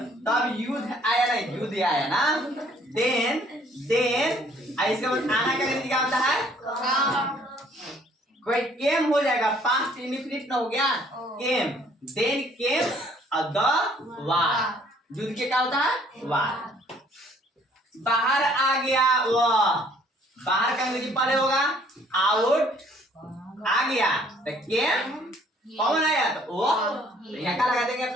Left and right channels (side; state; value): both; normal; correlation 0.60